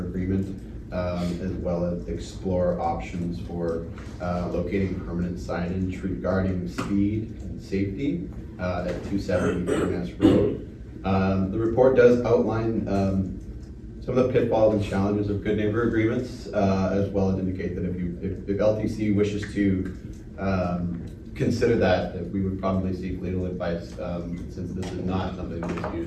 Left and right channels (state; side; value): identical; both; correlation 1.00